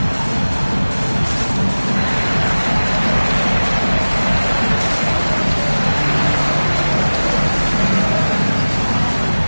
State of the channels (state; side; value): inverted; both; correlation -1.00